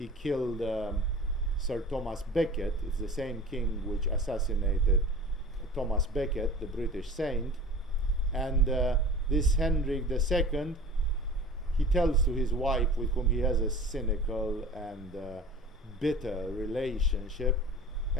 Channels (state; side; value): normal; both; correlation 0.40